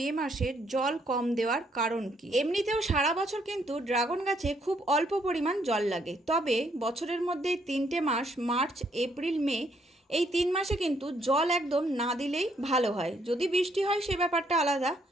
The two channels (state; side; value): normal; both; correlation 0.71